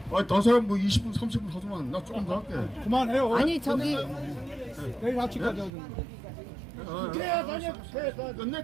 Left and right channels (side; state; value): left; drops out; at 5.7 s